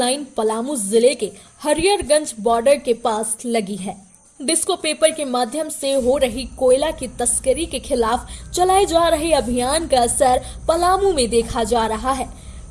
पलामू जिले के हरियरगंज बॉर्डर के पास लगी है। डिस्को पेपर के माध्यम से हो रही कोयला की तस्करी के खिलाफ चलाए जा रहे अभियान का असर पलामू में देखा जा रहा है।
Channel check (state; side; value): identical; both; correlation 1.00